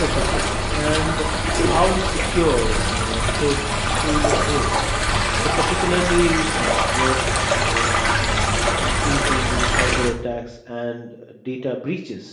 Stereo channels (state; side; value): identical; both; correlation 1.00